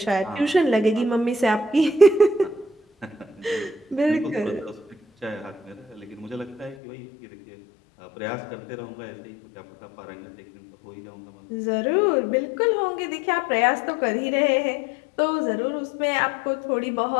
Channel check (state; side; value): drops out; right; at 6.8 s